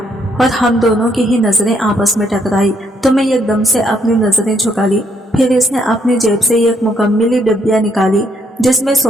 और हम दोनों की ही नजरें आपस में टकराई तो मैं एकदम से अपनी नजरें झुका ली। फिर इसने अपनी जेब से एक मुकम्मली डिब्बिया निकाली जिसमें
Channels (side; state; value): both; normal; correlation 0.73